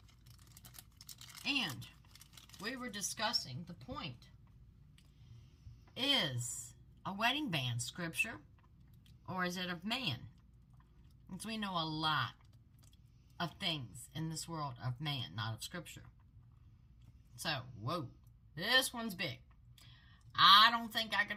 And we were discussing the point. Is a wedding band scripture or is it of man? Because we know a lot of things in this world of man, not of scripture. So, whoa, this one's big. I don't think I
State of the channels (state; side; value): identical; both; correlation 1.00